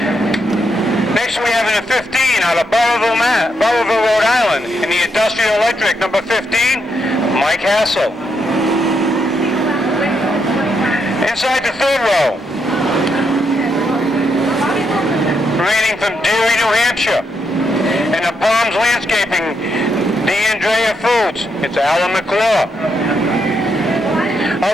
Next we have in the 15, out of Burrillville, Rhode Island, in the Industrial Electric, number 15, Mike Hassell. Inside the third row, remaining from Dewey, New Hampshire, and the Palms Landscaping, D'Andrea Foods, it's Alan McClure.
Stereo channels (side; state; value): both; normal; correlation 0.79